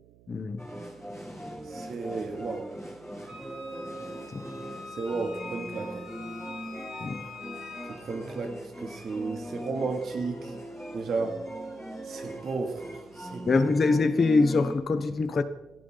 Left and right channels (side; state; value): right; noise; hum, 25 dB below the sound